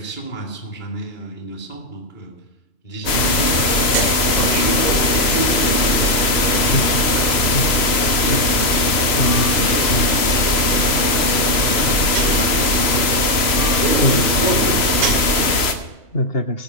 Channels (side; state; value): right; late; 3.0 ms